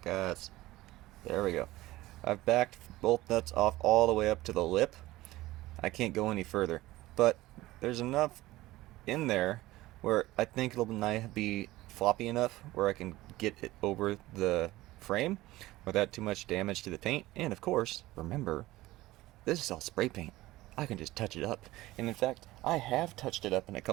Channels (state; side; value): quieter; left; 17.7 dB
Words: There we go. I've backed both nuts off all the way up to the lip. I can't go any further, but there's enough in there where I think it'll be floppy enough where I can get it over the frame without too much damage to the paint. And of course, remember, this is all spray paint. I can just touch it up. And in fact, I have touched it up in a